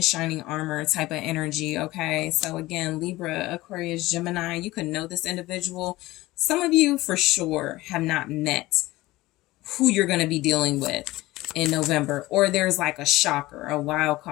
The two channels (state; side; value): quieter; right; 18.7 dB